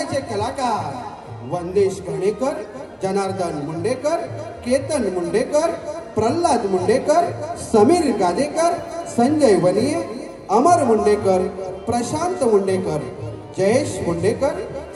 कलाकार वंदेश घाणेकर जनार्दन मुंडेकर केतन मुंडेकर प्रल्हाद मुंडेकर समीर गादेकर संजय वनिये अमर मुंडेकर प्रशांत मुंडेकर जयेश मुंडेकर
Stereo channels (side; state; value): both; identical; correlation 1.00